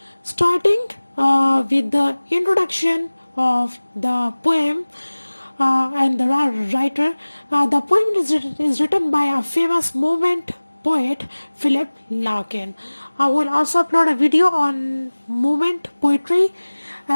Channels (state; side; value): inverted; both; correlation -1.00